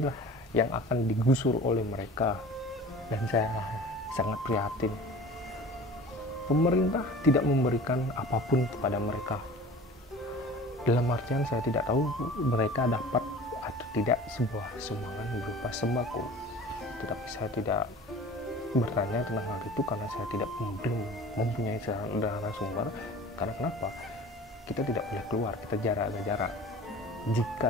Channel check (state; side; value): normal; both; correlation 0.41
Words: yang akan digusur oleh mereka, dan saya sangat prihatin. Pemerintah tidak memberikan apapun kepada mereka. Dalam artian saya tidak tahu mereka dapat atau tidak sebuah sumbangan berupa sembako. Tetapi saya tidak bertanya tentang hal itu karena saya belum mempunyai narasumber. Karena kenapa? Kita tidak boleh keluar, kita jaga jarak.